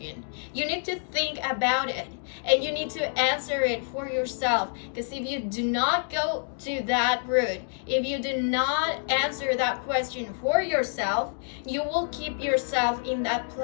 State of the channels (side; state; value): right; silent; digital silence